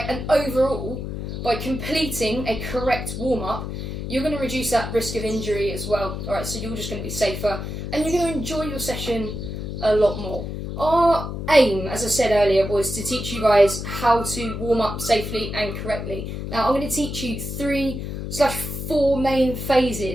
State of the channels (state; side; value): noise; left; hum, 6 dB below the sound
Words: and overall, by completing a correct warm-up, you're going to reduce that risk of injury as well. Alright, so you're just going to be safer and you're going to enjoy your session a lot more. Our aim, as I said earlier, was to teach you guys how to warm up safely and correctly. Now I'm going to teach you 3/4 main